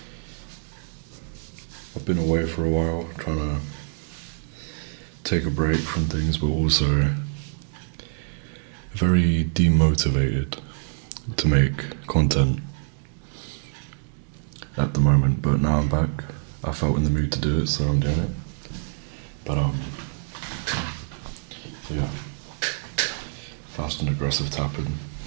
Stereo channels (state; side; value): silent; left; digital silence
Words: I've been away for a while, trying to take a break from things, but also very demotivated to make content at the moment. But now I'm back. I felt in the mood to do it, so I'm doing it. But yeah, fast and aggressive tapping.